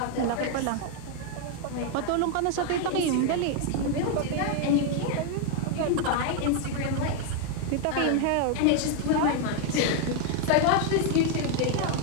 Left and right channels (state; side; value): different; both; correlation 0.00